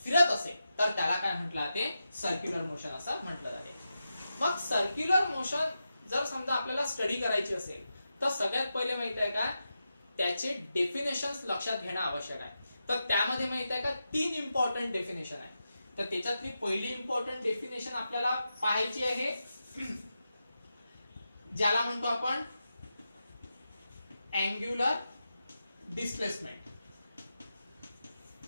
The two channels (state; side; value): inverted; both; correlation -0.89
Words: फिरत असेल तर त्याला काय म्हटलं जाते, सर्क्युलर मोशन असं म्हटलं जाते. मग सर्क्युलर मोशन जर समजा आपल्याला स्टडी करायची असेल तर सगळ्यात पहिले माहित आहे का, त्याचे डेफिनेशन्स लक्षात घेणं आवश्यक आहे. तर त्यामध्ये माहित आहे का 3 इम्पॉर्टंट डेफिनेशन आहे. तर त्याच्यातली पहिली इम्पॉर्टंट डेफिनेशन आपल्याला पाहायची आहे, ज्याला म्हणतो आपण अँग्युलर डिस्प्लेसमेंट.